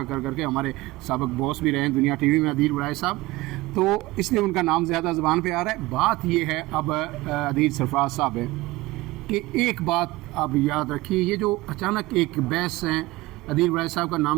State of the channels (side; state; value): left; quieter; 20.0 dB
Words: کر کے ہمارے سابق باس بھی رہے ہیں دنیا ٹی وی میں عدیل وڑائے صاحب، تو اس لیے ان کا نام زیادہ زبان پہ آ رہا ہے۔ بات یہ ہے اب عدیل سرفراز صاحب ہے کہ ایک بات آپ یاد رکھیے، یہ جو اچانک ایک بحث ہے، عدیل وڑائے صاحب کا